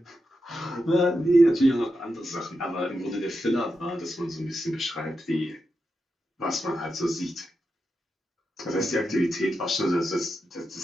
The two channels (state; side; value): normal; both; correlation 0.88